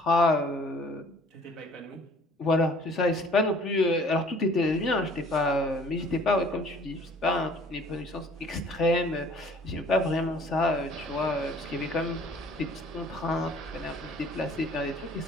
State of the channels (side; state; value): both; normal; correlation 0.54